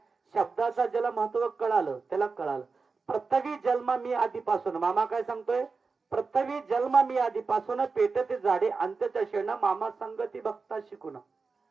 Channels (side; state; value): left; quieter; 4.5 dB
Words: शब्दाचा ज्याला महत्व कळालं त्याला कळालं. पृथ्वी जन्म मी आधीपासून, मामा काय सांगतोय, पृथ्वी जन्म मी आधीपासून पेटत जाडे अंत्यदर्शना मामा संगती भक्त शिकून.